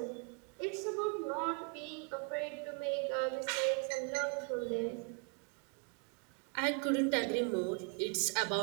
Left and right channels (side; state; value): left; quieter; 35.8 dB